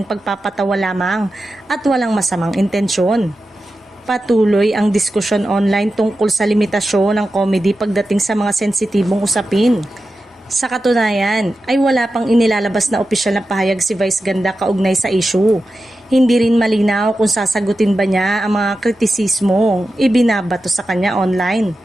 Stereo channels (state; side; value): normal; both; correlation 0.92